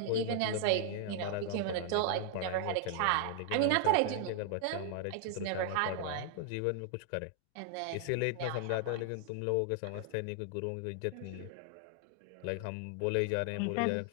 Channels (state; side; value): different; both; correlation 0.00